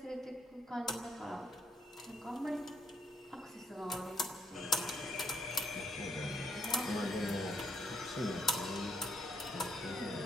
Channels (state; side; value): normal; both; correlation 0.72